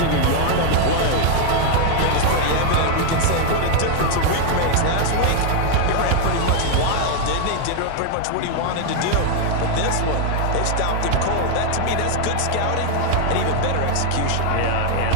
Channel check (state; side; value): different; both; correlation 0.00